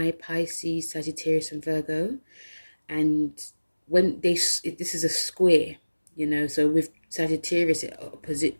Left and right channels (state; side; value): inverted; both; correlation -1.00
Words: Pisces, Sagittarius and Virgo. And when this is a square, you know, so with Sagittarius